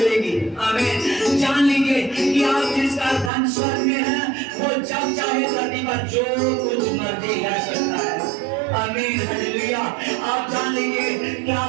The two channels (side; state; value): left; drops out; at 3.3 s